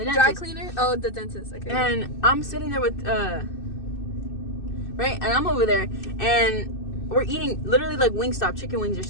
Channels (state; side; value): late; right; 2.6 ms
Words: dentist. Dry cleaner? Oh, the dentist. Okay. And I'm sitting there with, right? And I'm over there, and we're eating, literally, like, Wingstop, chicken wings or